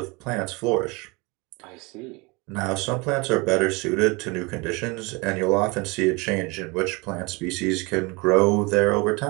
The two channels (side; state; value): left; quieter; 27.0 dB